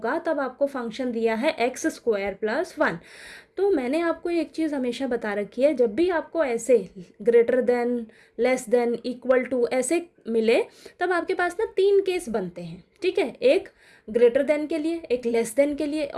तब आपको फंक्शन दिया है x स्क्वायर प्लस 1। तो मैंने आपको एक चीज़ हमेशा बता रखी है, जब भी आपको ऐसे greater than, less than, equal to ऐसे मिले तब आपके पास ना 3 केस बनते हैं, ठीक है। एक ग्रेटर देन के लिए, एक लेस देन के लिए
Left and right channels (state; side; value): identical; both; correlation 1.00